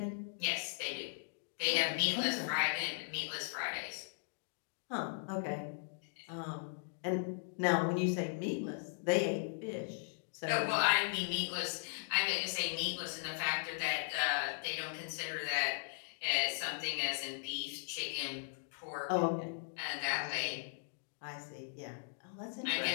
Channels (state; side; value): silent; right; digital silence